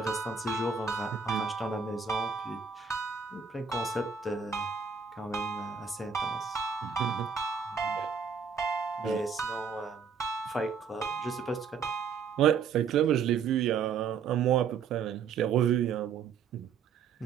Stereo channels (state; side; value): quieter; left; 6.2 dB